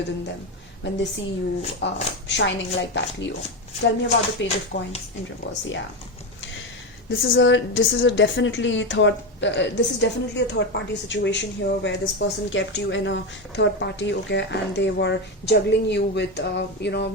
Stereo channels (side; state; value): both; normal; correlation 0.14